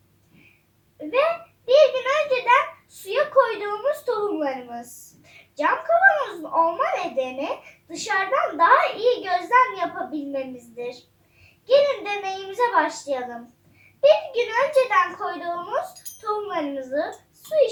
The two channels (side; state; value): both; identical; correlation 1.00